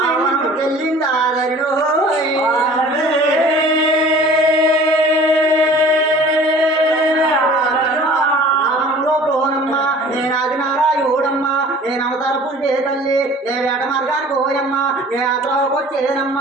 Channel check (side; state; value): both; normal; correlation 0.46